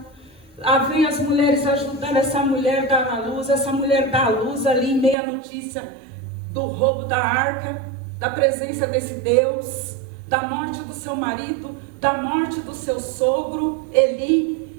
Lá vem as mulheres ajudando essa mulher a dar à luz. Essa mulher dá à luz ali, meia notícia do roubo da arca, da presença desse Deus, da morte do seu marido, da morte do seu sogro,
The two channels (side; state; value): left; drops out; at 5.2 s